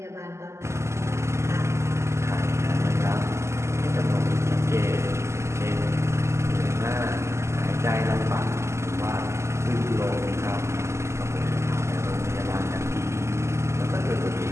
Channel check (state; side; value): late; left; 0.13 ms